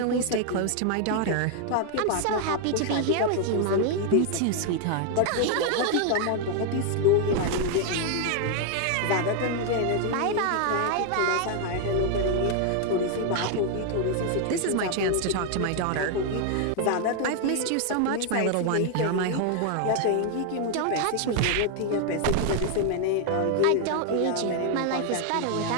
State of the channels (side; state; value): both; different; correlation 0.00